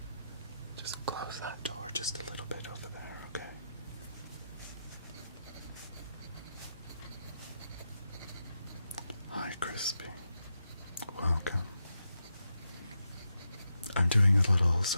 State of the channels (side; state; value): both; inverted; correlation -0.85